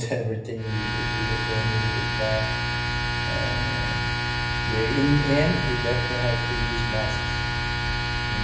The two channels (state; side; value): identical; both; correlation 1.00